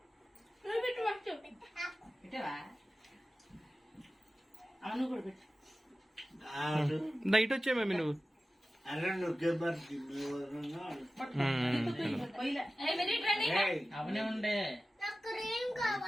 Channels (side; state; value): both; normal; correlation 0.95